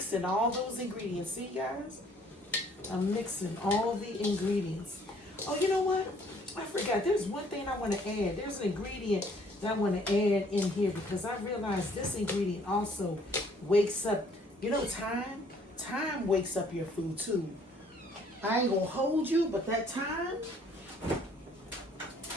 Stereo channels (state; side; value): normal; both; correlation 0.61